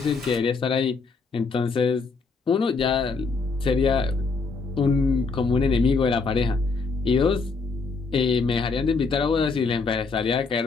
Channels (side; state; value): right; quieter; 4.3 dB